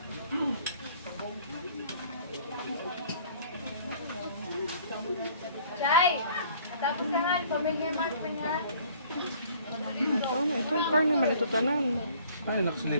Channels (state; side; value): inverted; both; correlation -0.55